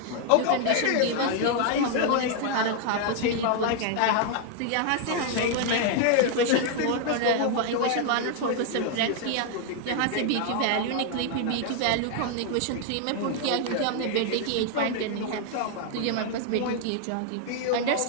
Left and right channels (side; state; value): both; different; correlation 0.00